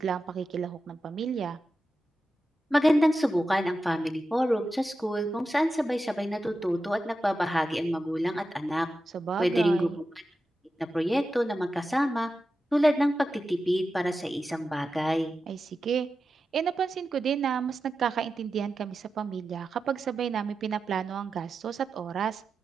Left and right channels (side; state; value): both; normal; correlation 0.91